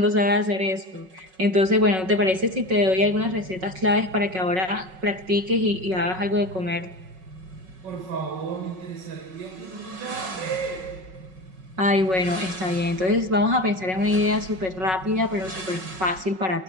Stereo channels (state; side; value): late; left; 5.4 ms